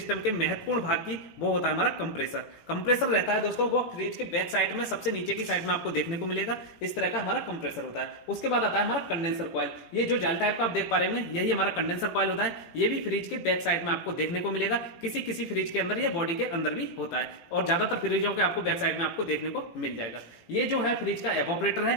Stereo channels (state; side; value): late; right; 18 ms